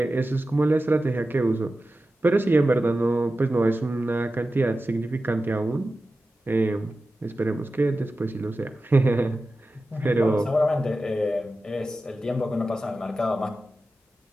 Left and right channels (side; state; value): both; normal; correlation 0.93